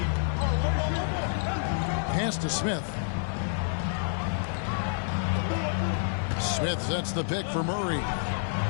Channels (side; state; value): right; silent; digital silence